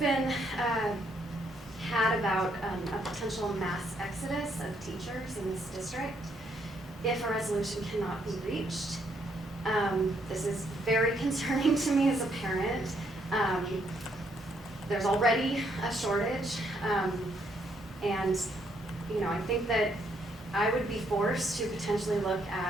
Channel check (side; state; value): both; normal; correlation 0.72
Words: had about a potential mass exodus of teachers in this district if a resolution cannot be reached. This is very concerning to me as a parent. There's already a shortage. And, I think that I would be forced to potentially look